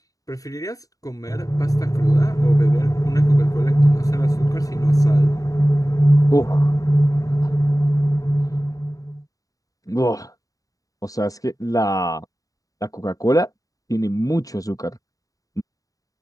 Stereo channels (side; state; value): right; late; 0.17 ms